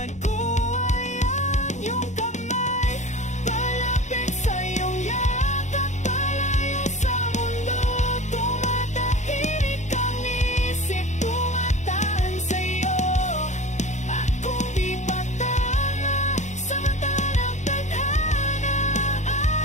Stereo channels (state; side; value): late; right; 0.34 ms